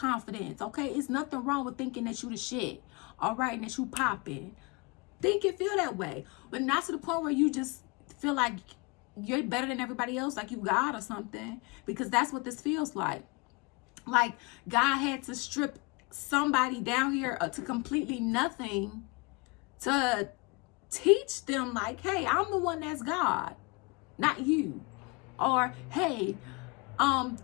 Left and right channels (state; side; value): quieter; right; 28.0 dB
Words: okay? It's nothing wrong with thinking that you the shit, all right, and that you popping. Think and feel that way, but not to the point where you just feel like you're better than everybody else, like you God or something, because that's what this feels like. Like God had to strip somebody down here to completely nothing to teach them, like, hey, I'm the one that's God, not you. Or, hey,